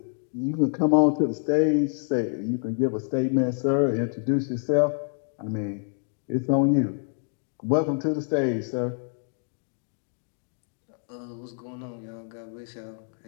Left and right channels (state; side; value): silent; right; 60 dB below the other